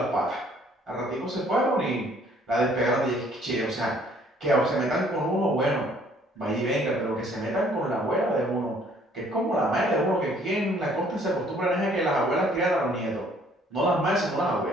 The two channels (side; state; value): both; normal; correlation 0.60